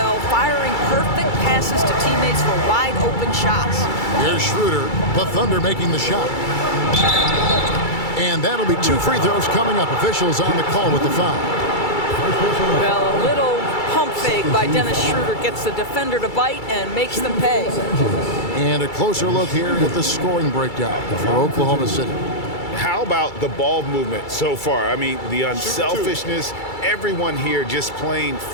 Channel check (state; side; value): late; right; 2.3 ms